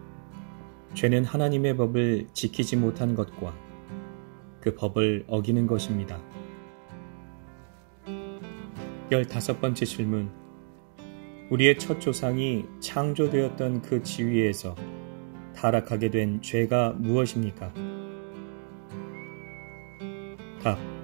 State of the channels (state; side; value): silent; left; 57 dB below the other